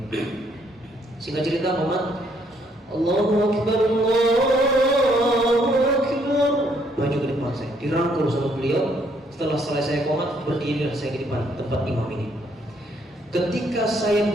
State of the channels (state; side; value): normal; both; correlation 0.68